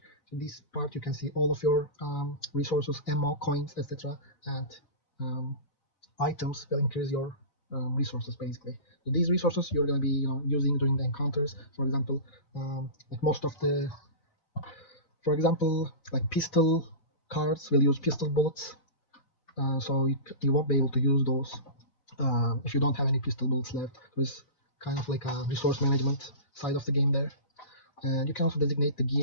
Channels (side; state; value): right; late; 4.0 ms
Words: So this part you can see all of your resources, ammo, coins, etc. And items will increase your resources basically. So these resources you're going to be using during the encounters. For example, like most of the, for example, like pistol cards will use pistol bullets. So you won't be able to use those if you don't have any pistol bullets left. There's kind of like a resource management side of the game there. And you can also designate the